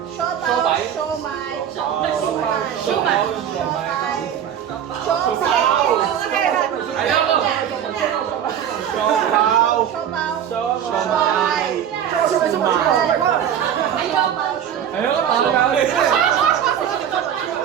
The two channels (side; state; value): left; quieter; 9.4 dB